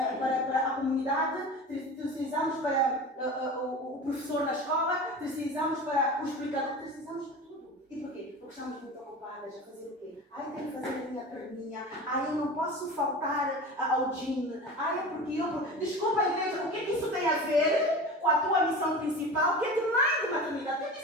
Para a comunidade, precisamos para o professor na escola, precisamos para o explicador, precisamos para tudo. E porquê? Porque estamos muito ocupadas a fazer o quê? Ai, tenho que fazer a minha perninha. Ai, eu não posso faltar ao gym. Ai, é porque eu... Desculpa, igreja, o que isso tem a ver com a tua missão principal, que é de mãe de maternidade? O que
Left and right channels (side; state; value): both; normal; correlation 0.33